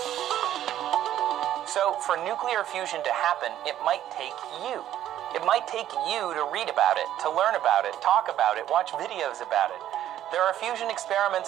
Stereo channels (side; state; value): left; quieter; 11.9 dB